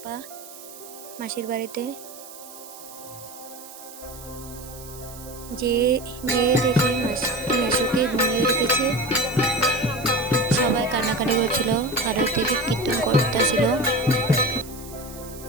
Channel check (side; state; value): right; noise; hiss, 16 dB below the sound